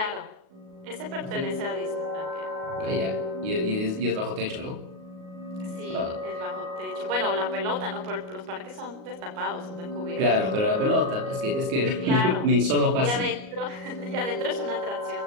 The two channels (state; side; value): late; left; 38 ms